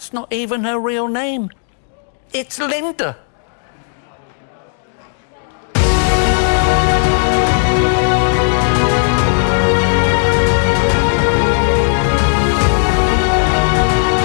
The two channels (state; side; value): silent; right; digital silence